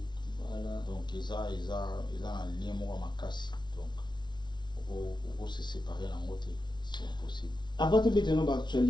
Donc eza na lien moko makasi donc oko se séparer nango te, c'est impossible. Avant de mettre dans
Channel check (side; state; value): right; late; 0.21 ms